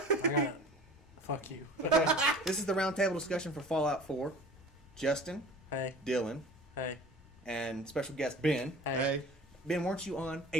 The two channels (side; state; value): both; normal; correlation 0.42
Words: Fuck you. This is the roundtable discussion for Fallout 4. Justin. Hey. Dylan. Hey. And special guest Ben. Hey. Ben, weren't you on